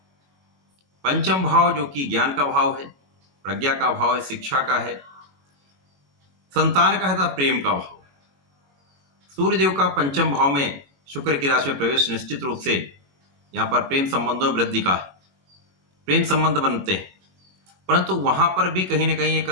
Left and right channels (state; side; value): late; left; 21 ms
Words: पंचम भाव जो कि ज्ञान का भाव है, प्रज्ञा का भाव है, शिक्षा का है, संतान का है तथा प्रेम का भाव। सूर्यदेव का पंचम भाव में शुक्र की राशि में प्रवेश निश्चित रूप से यहां पर प्रेम संबंधों में वृद्धि का है। प्रेम संबंध बनते हैं, परंतु वहां पर भी कहीं ना कहीं एक